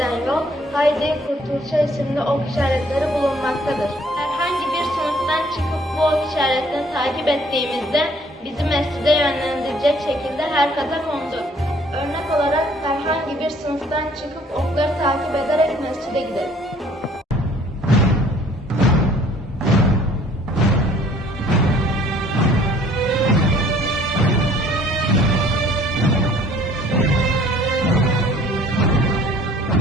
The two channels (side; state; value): both; normal; correlation 0.58